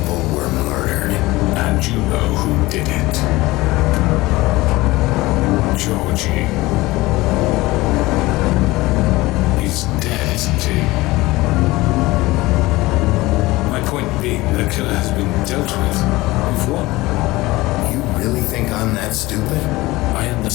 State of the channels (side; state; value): right; quieter; 19.9 dB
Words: were murdered. And you know who did it. Georgie. He's dead, isn't he? My point being, the killer has been dealt with. We've won. You really think I'm that stupid? I